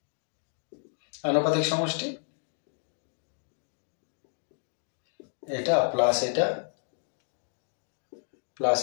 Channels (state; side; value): silent; right; 57 dB below the other